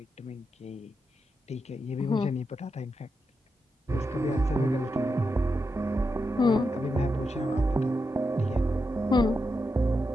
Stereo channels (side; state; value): both; normal; correlation 0.86